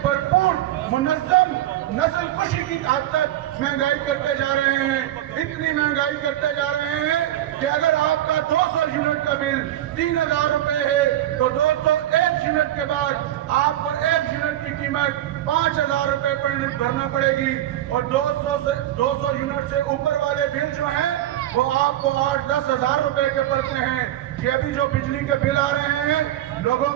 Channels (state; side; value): quieter; left; 13.1 dB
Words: भरपूर मुनज़्ज़म नस्ल कुशी की हद तक महंगाई करते जा रहे हैं। इतनी महंगाई करते जा रहे हैं कि अगर आपका 200 यूनिट का बिल 3000 रुपए है तो 201 यूनिट के बाद आपको 1 यूनिट की कीमत 5000 रुपए पर भरना पड़ेगी। और 200 यूनिट से ऊपर वाले बिल जो हैं वो आपको 8-10 हजार रुपए के पड़ते हैं। ये अभी जो बिजली के बिल आ रहे हैं, लोगों